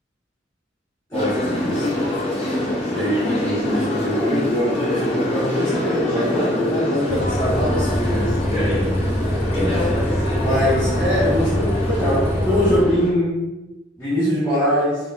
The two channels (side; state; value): both; normal; correlation 0.60